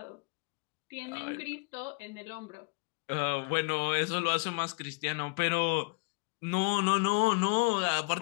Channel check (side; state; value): right; quieter; 32.5 dB